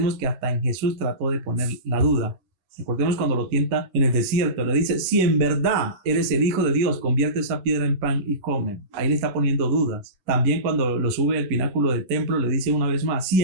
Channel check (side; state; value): left; late; 11 ms